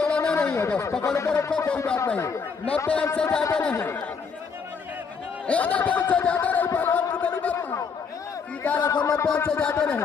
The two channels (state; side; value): quieter; right; 5.6 dB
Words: नहीं है, बस पकड़ कर रखो, कोई बात नहीं। 90 अंक से ज्यादा नहीं, 90 अंक से ज्यादा नहीं पहलवान, कितनी बार सीधा रखो, 90 अंक से ज्यादा